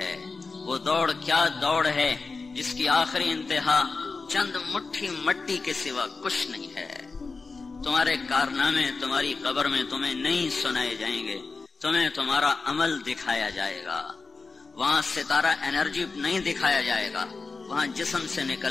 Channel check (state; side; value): quieter; right; 4.1 dB